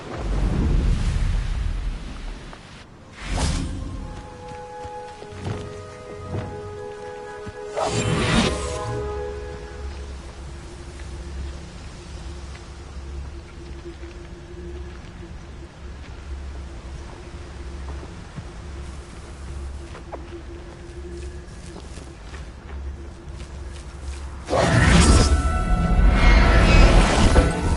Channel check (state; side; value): identical; both; correlation 1.00